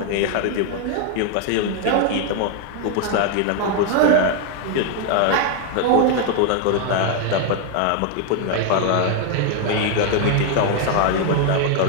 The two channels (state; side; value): different; both; correlation 0.01